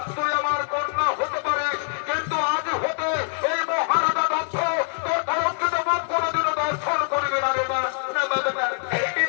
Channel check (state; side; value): silent; right; 58 dB below the other